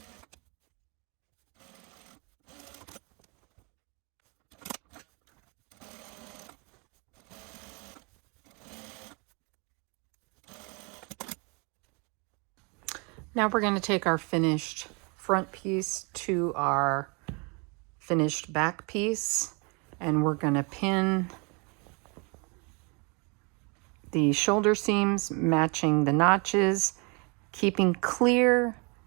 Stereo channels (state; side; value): quieter; left; 32.1 dB